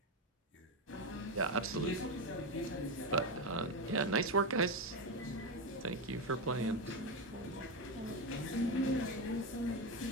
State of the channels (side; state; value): both; normal; correlation 0.12